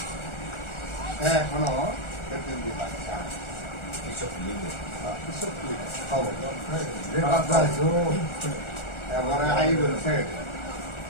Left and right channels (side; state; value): right; late; 1.4 ms